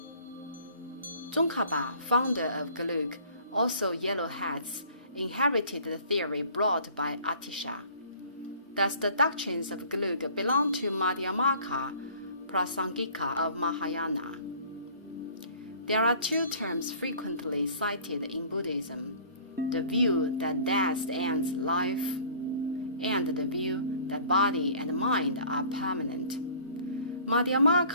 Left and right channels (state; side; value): inverted; both; correlation -0.50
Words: Tsongkhapa, founder of Gelug, also Yellow Hats, inherited the theory brought by Atisha. Thus, the doctrines of Gelug belong to Madhyamaka Prasangika of Mahayana. There are two terms frequently cited in Buddhism: the view that death ends life, and the view that body and mind are permanent.